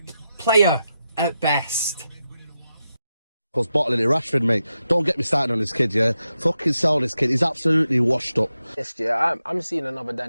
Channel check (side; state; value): both; inverted; correlation -0.88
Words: player at best. Was bottling it, Rashford, mate. Don't get me started on this kid, yeah? Fucking sell this kid. He's absolutely washed up. Yes, yeah, I'm seeing another